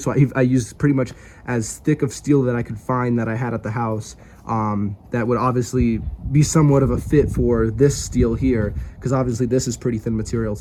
I used pretty much as thick of steel that I could find that I had at the house, that would obviously be somewhat of a fit for this steel here, because obviously this is pretty thin material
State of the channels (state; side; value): identical; both; correlation 1.00